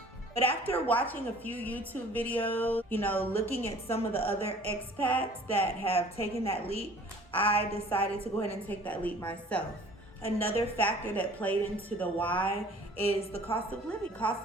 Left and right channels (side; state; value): both; normal; correlation 0.50